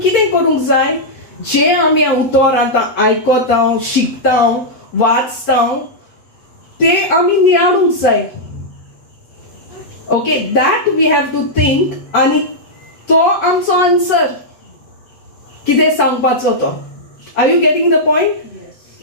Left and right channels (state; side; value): late; right; 8.1 ms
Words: करूंक जाय? जे आमी उतर आतां आयकता, शिकता, वाचता, ते आमी नियाळूंक जाय. Okay, that we have to think, आनी तो आमचो आन्सर कितें सांगपाचो तो. Are you getting the point?